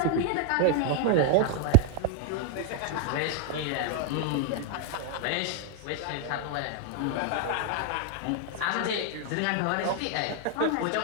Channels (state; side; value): different; both; correlation 0.00